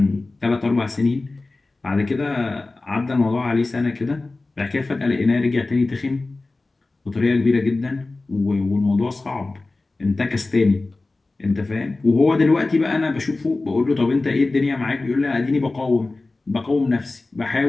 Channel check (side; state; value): right; quieter; 3.3 dB